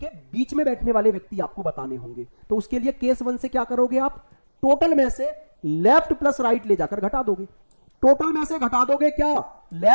बीच में बैठने वाले व्यक्ति आपको बताने होंगे। तो उसके लिए केस 1 से क्या करोगे आप? टोटल में से लेफ्ट प्लस राइट ले जाकर घटा दोगे। टोटल में से घटा दोगे क्या?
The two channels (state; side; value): inverted; both; correlation -1.00